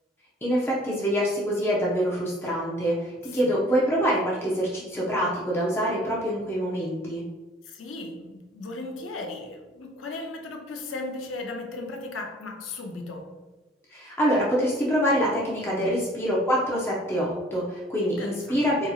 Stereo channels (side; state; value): both; normal; correlation 0.53